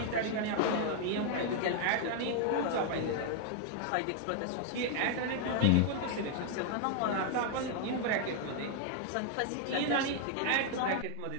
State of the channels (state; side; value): different; both; correlation 0.00